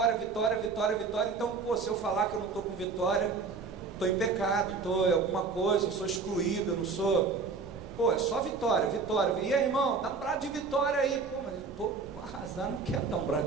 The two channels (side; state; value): left; quieter; 4.8 dB